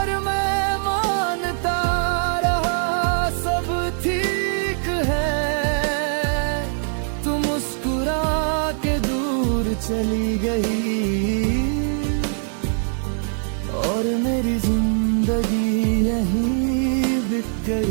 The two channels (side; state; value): left; silent; digital silence